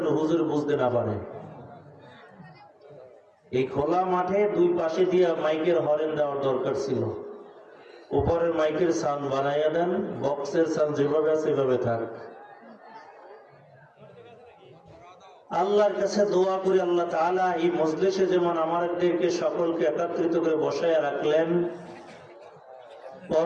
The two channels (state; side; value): identical; both; correlation 1.00